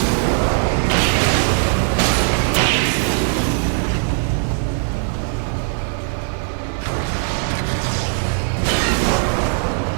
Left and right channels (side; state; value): left; silent; 57 dB below the other